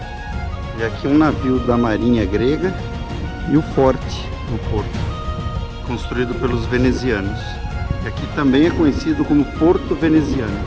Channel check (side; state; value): both; identical; correlation 1.00